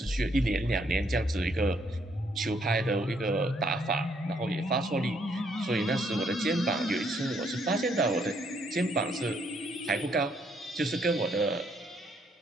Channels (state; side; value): normal; both; correlation 0.70